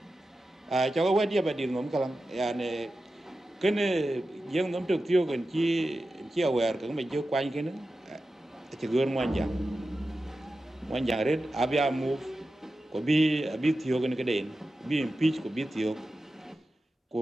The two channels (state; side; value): normal; both; correlation 0.92